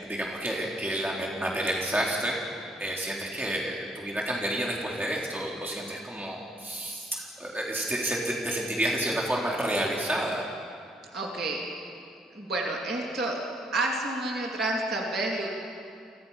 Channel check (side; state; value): both; normal; correlation 0.68